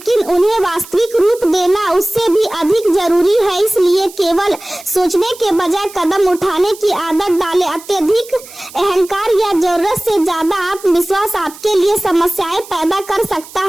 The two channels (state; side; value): noise; right; hiss, 18 dB below the sound